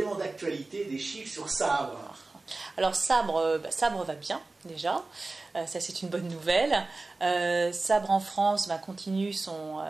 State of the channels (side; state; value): left; quieter; 3.3 dB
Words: d'actualité, des chiffres sur Sabre? Alors Sabre va bien déjà, ça c'est une bonne nouvelle. Sabre en France continue